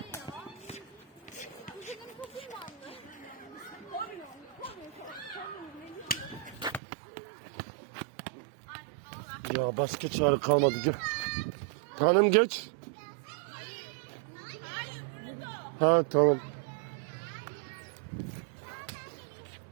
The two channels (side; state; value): left; drops out; at 6.8 s